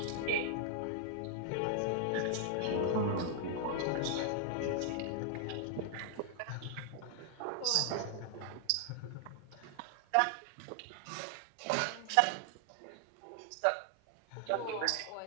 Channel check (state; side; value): different; both; correlation 0.00